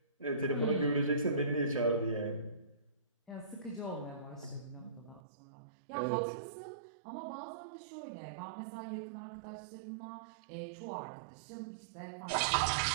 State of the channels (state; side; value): drops out; left; at 5.2 s